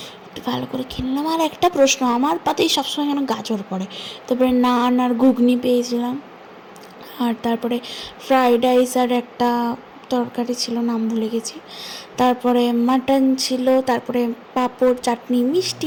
একটু ভালো করে খেয়ে নিলাম। আর একটা প্রশ্ন, আমার পাতেই সবসময় কেন গাজর পড়ে। তারপরে নান আর ঘুগনি পেয়েছিলাম। আর তারপরে ফ্রাইড রাইস আর একটা তরকারি ছিল, নাম ভুলে গেছি। তারপরে মাটন ছিল, তারপরে পাঁপড়, চাটনি,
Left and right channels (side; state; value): both; identical; correlation 1.00